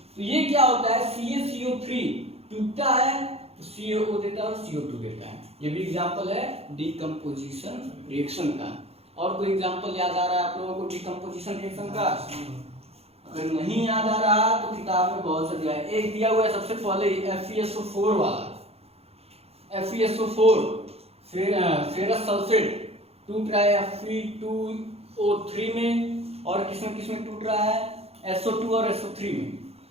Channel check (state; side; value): late; left; 0.29 ms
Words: तो ये क्या होता है? CaCO3 टूटता है तो CaO देता है और CO2 देता है। ये भी एग्जाम्पल है डीकम्पोजिशन रिएक्शन का। और कोई एग्जाम्पल याद आ रहा है आप लोगों को डीकम्पोजिशन रिएक्शन का? अगर नहीं याद आ रहा तो किताब में बहुत सा दिया है। एक दिया हुआ है सबसे पहले FeSO4 वाला, FeSO4, फिर फेरस सल्फेट टूट रहा है Fe2O3 में, और किसमें टूट रहा है? SO2 और SO3 में।